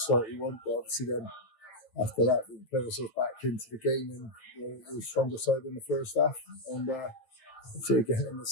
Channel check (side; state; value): right; late; 9.0 ms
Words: you want, but obviously then after that we played ourselves back into the game and we were stronger side in the first half. And obviously again in the